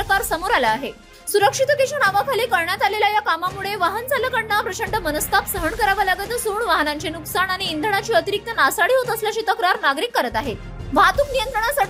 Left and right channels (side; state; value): both; identical; correlation 1.00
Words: समोर आला आहे. सुरक्षिततेच्या नावाखाली करण्यात आलेल्या या कामामुळे वाहन चालकांना प्रचंड मनस्ताप सहन करावा लागत असून वाहनांचे नुकसान आणि इंधनाची अतिरिक्त नासाडी होत असल्याची तक्रार नागरिक करत आहेत. वाहतूक